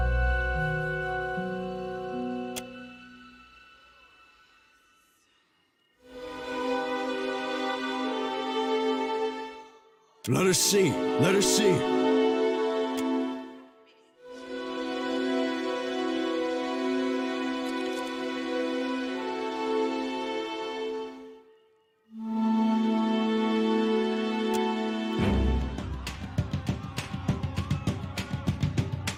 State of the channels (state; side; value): identical; both; correlation 1.00